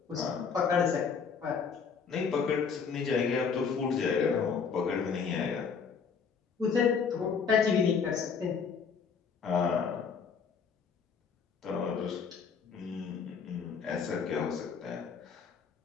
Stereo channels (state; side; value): quieter; right; 6.0 dB